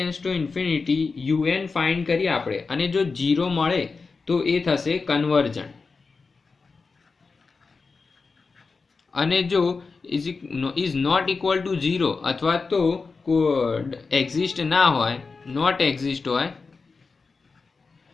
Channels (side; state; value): right; quieter; 4.4 dB